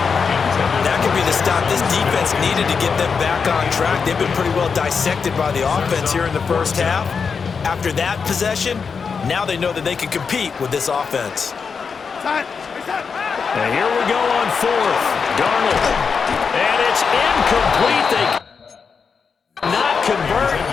That could be the stop this defense needed to get them back on track. They've been pretty well dissected by the offense here in the first half. After that possession, now they know that they can compete with this offense. And here we go on 4th. Darnold. And it's incomplete. They cannot convert.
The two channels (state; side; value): quieter; right; 5.7 dB